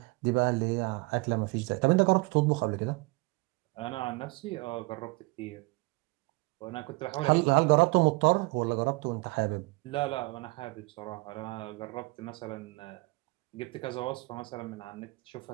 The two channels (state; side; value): quieter; left; 25.4 dB